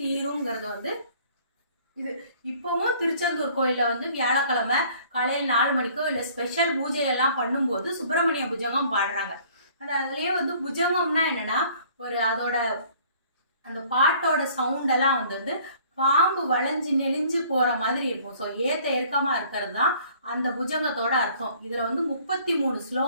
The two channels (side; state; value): both; inverted; correlation -0.55